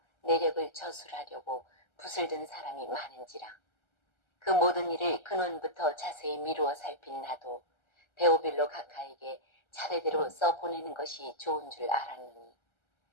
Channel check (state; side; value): late; right; 1.3 ms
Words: 내력을 저술하려고 붓을 든 사람이 많은지라. 그 모든 일을 근원부터 자세히 미루어 살핀 나도 데오빌로 각하에게 차례대로 써보내는 것이 좋은 줄 알았느니